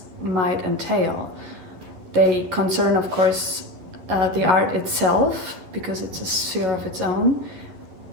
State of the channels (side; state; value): left; late; 11 ms